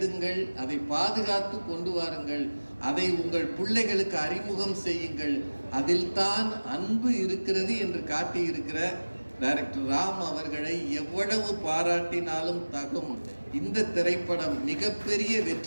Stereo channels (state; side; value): inverted; both; correlation -1.00